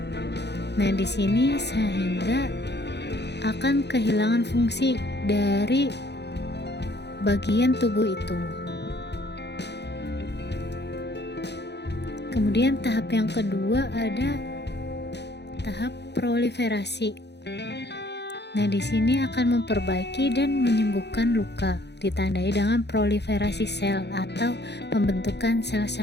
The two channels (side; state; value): right; late; 0.50 ms